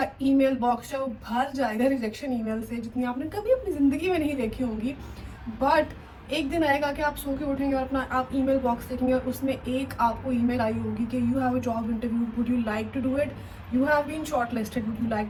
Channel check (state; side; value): identical; both; correlation 1.00